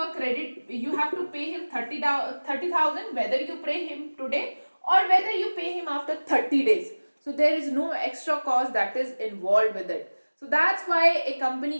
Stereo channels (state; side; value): inverted; both; correlation -1.00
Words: a credit, you have to pay him 30,000 whether you pay him today or whether you pay him after 30 days. So there is no extra cost that is involved with it. So that's why a